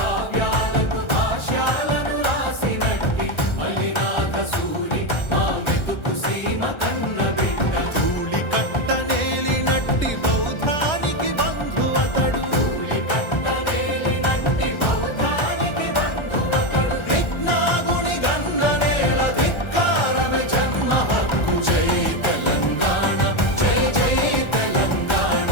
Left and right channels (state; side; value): late; right; 1.3 ms